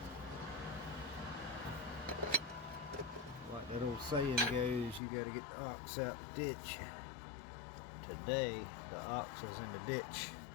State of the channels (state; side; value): drops out; right; at 5.0 s